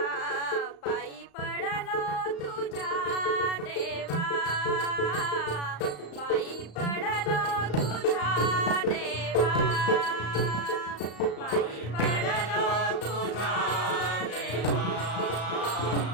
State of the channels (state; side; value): late; right; 35 ms